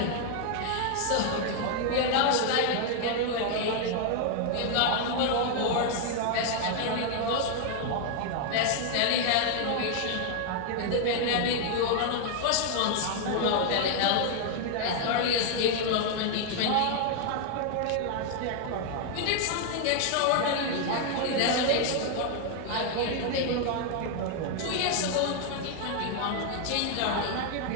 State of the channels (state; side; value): different; both; correlation 0.00